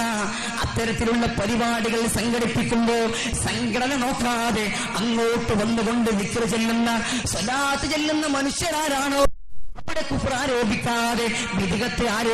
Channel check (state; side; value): identical; both; correlation 1.00